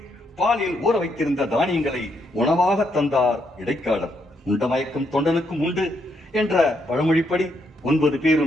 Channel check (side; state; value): both; normal; correlation 0.76